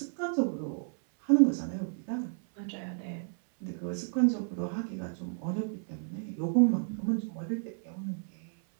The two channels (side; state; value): left; silent; 56 dB below the other